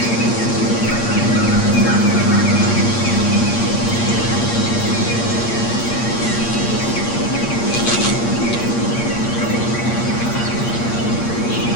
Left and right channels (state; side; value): late; right; 8.6 ms